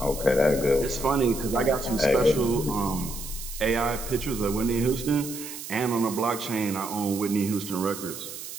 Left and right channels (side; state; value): right; noise; hiss, 10 dB below the sound